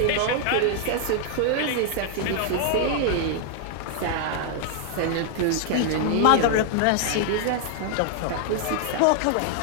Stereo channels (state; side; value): different; both; correlation 0.00